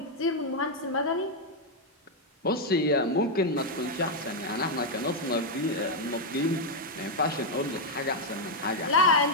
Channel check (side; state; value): both; normal; correlation -0.01